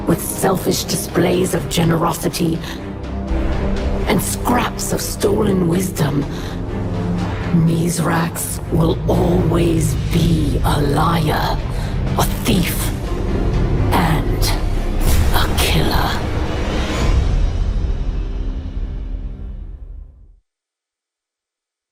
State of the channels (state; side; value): identical; both; correlation 1.00